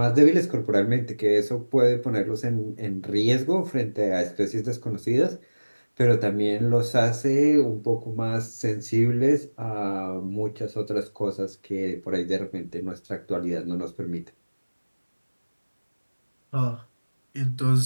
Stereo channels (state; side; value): inverted; both; correlation -1.00